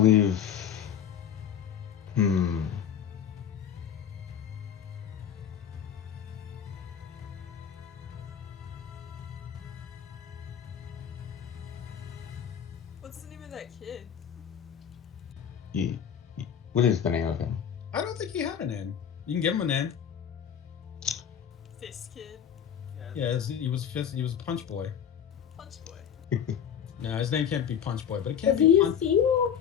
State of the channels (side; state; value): right; quieter; 8.6 dB